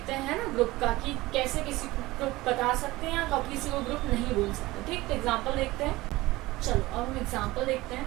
हैं ना ग्रुप का, कि कैसे किसी को ग्रुप बता सकते हैं या कब किसी को ग्रुप नहीं बोल सकते, ठीक। तो एग्जांपल देखते हैं, चलो अब हम एग्जांपल देखते हैं,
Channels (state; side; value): quieter; left; 19.4 dB